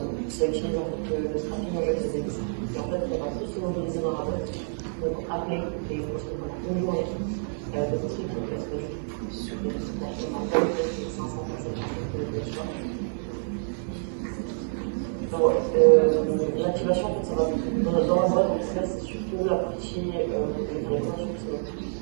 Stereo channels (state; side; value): silent; left; 60 dB below the other